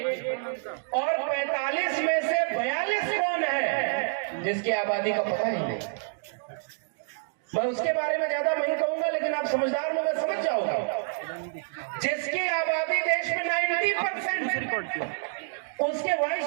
और 45 में से 42 कौन है जिसकी आबादी का पता ही नहीं? मैं उसके बारे में ज्यादा नहीं कहूंगा, लेकिन आप समझदार लोग समझ जाओगे। जिसकी आबादी देश में 90%, उसके वाइस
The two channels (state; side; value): silent; left; digital silence